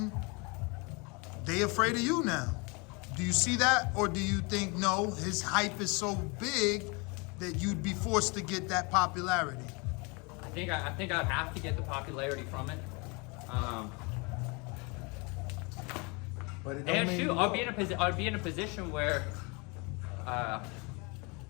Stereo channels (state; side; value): quieter; right; 29.7 dB